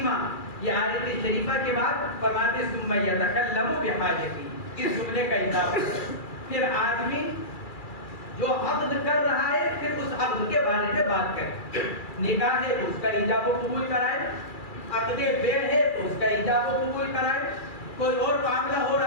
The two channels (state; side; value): late; right; 2.3 ms